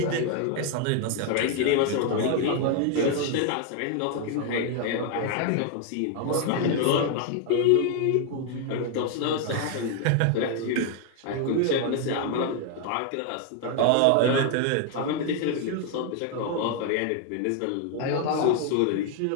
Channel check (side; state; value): both; different; correlation 0.00